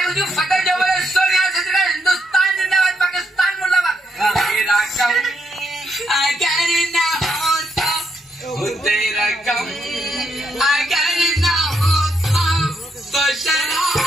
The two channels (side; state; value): both; normal; correlation 0.77